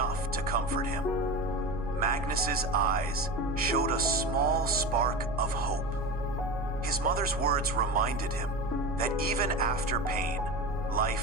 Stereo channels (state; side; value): noise; right; hum, 9 dB below the sound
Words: to comfort him. Magnus's eyes showed a small spark of hope. His mother's words reminded him that even after pain,